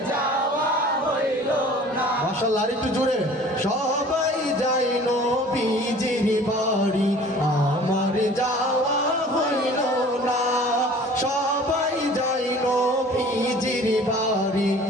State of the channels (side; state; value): both; normal; correlation 0.47